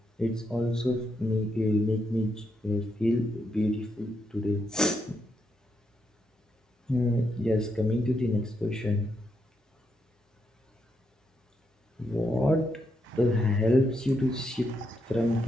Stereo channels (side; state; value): both; normal; correlation 0.80